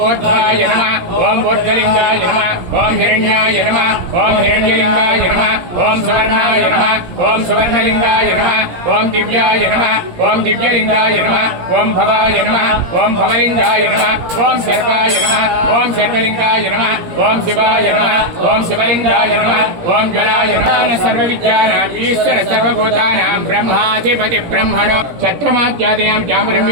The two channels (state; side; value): late; left; 17 ms